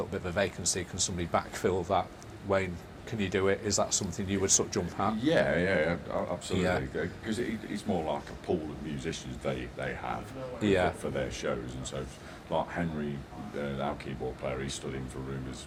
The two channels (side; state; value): both; identical; correlation 1.00